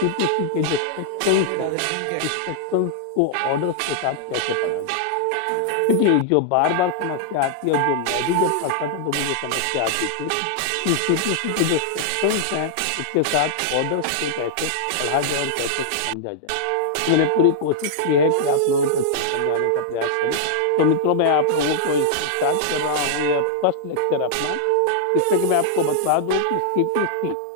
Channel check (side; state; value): both; different; correlation -0.01